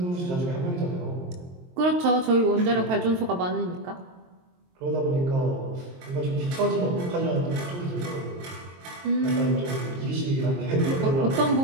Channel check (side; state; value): left; late; 23 ms